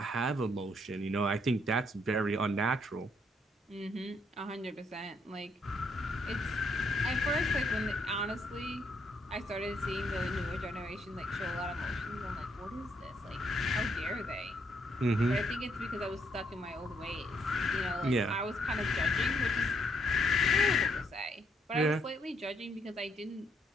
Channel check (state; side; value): normal; both; correlation 0.73